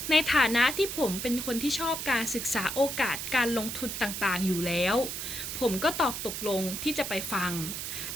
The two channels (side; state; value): right; noise; hiss, 5 dB below the sound